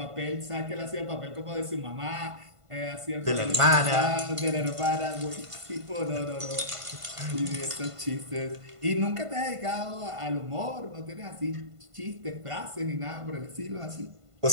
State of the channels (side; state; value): left; late; 1.5 ms